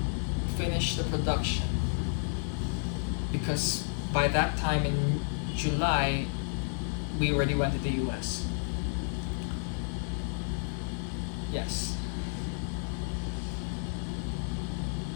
finish the production because by that time in July we already went to the US. Yes.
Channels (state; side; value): silent; right; 57 dB below the other